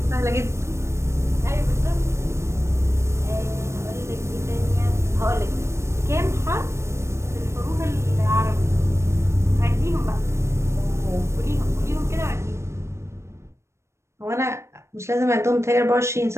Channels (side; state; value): left; late; 0.13 ms